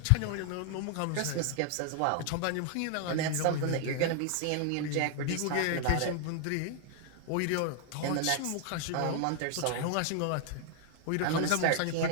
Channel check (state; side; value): different; both; correlation 0.00